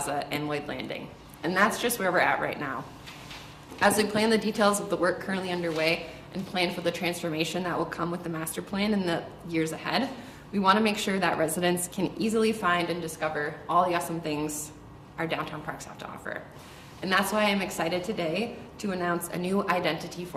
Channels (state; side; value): identical; both; correlation 1.00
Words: and Lloyd Landing. And that's just where we're at right now. As we plan the details of the work currently underway and plan for the transformation that will come with the master plan in the years ahead, we want to make sure that residents can easily find and discover all the awesome things our downtown parks have to offer. And that's why I'm excited today to announce a new identity